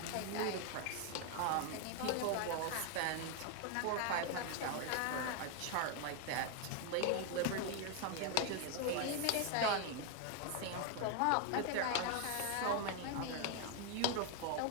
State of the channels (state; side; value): different; both; correlation 0.01